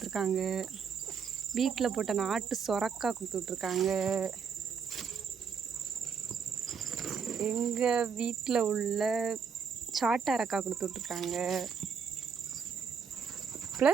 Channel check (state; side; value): quieter; left; 6.4 dB